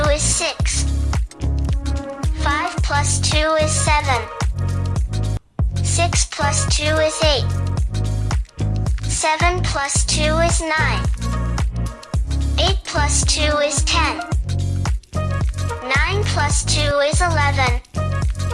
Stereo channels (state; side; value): identical; both; correlation 1.00